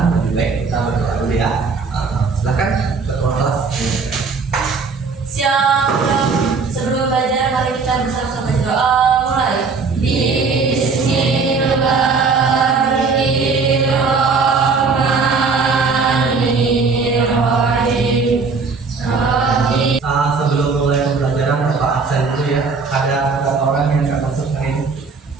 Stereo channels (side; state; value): left; quieter; 4.7 dB